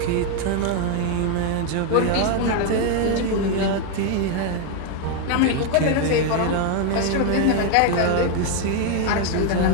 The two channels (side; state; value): both; different; correlation 0.01